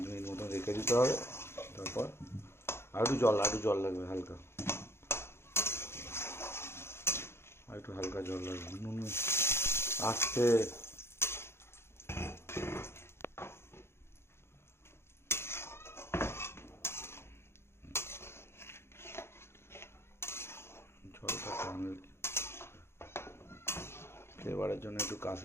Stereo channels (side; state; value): right; late; 0.12 ms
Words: মিনিট মতো রেখে দিতে হবে। তারপর আর একটু জল লাগবে হালকা, আর একটু হালকা জল লাগবে। নুন আসতে জলটা টানলে ফ্লেভারের জন্য একটু